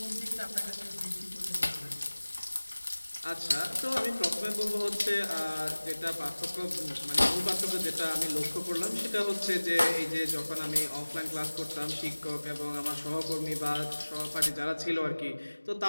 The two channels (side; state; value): both; inverted; correlation -1.00